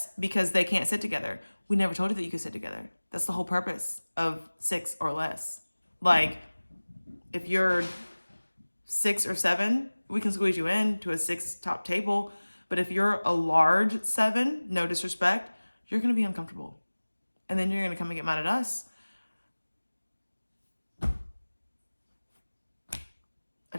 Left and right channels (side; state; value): both; inverted; correlation -1.00